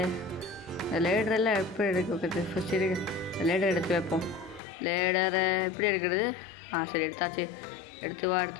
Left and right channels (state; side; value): drops out; right; at 4.6 s